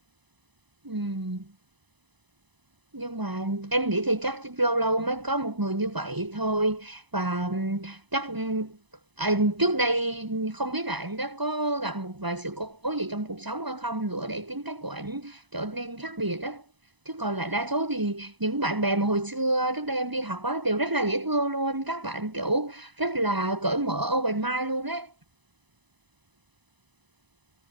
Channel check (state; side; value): late; left; 1.0 ms